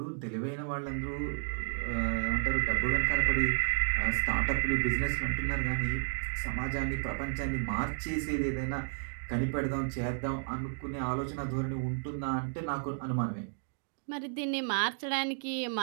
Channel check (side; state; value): left; silent; digital silence